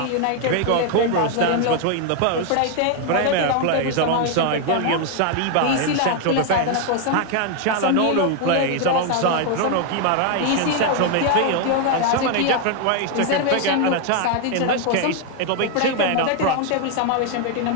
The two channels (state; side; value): different; both; correlation 0.00